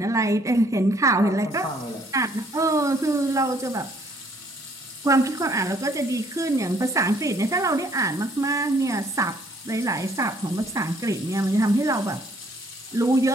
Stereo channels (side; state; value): both; normal; correlation 0.64